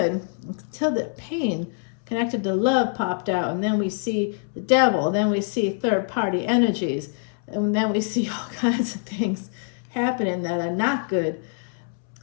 until the pain connected to love popped out. And then we see the devil. Then we see third-party energies. And then we see all kinds of things happening that are not good.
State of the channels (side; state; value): right; silent; 62 dB below the other